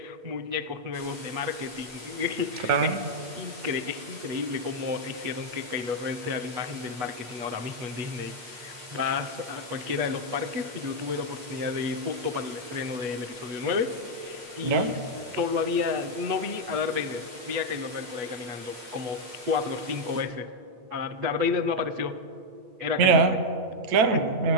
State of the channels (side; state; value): left; late; 8.5 ms